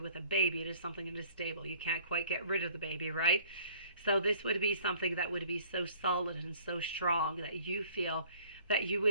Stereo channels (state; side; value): inverted; both; correlation -0.54